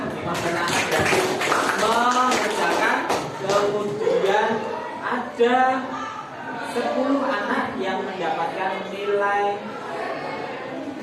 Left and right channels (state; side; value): identical; both; correlation 1.00